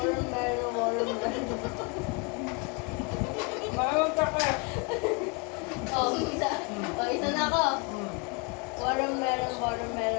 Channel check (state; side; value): quieter; right; 31.0 dB